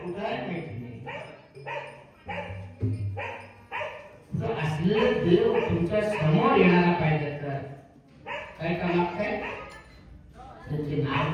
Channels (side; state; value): both; identical; correlation 1.00